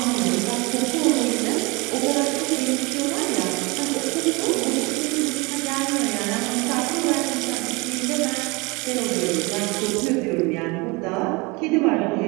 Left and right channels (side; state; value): left; quieter; 26.6 dB